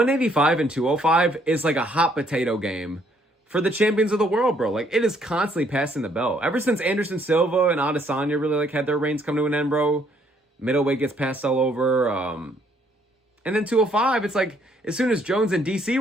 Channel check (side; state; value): both; normal; correlation 0.67